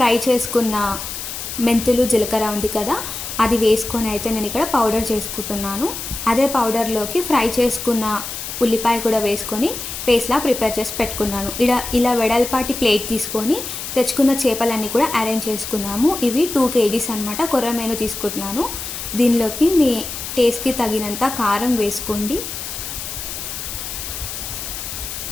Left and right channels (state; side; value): noise; left; hiss, 7 dB below the sound